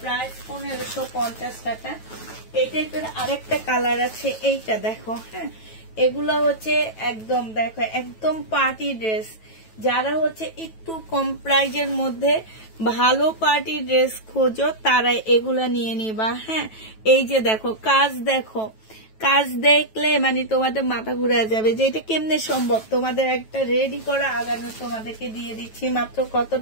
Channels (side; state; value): right; late; 9.2 ms